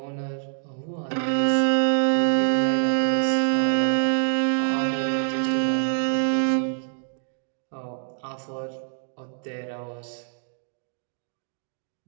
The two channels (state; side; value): silent; left; digital silence